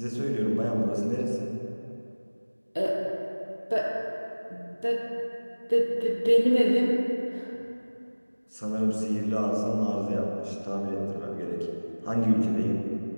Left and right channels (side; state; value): both; inverted; correlation -1.00